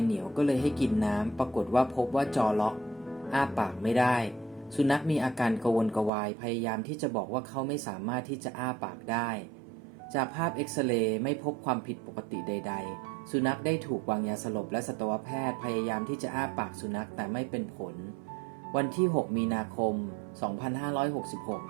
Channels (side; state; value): left; drops out; at 6.1 s